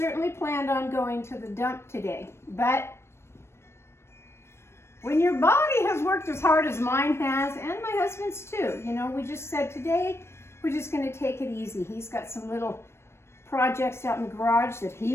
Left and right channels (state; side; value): late; right; 0.12 ms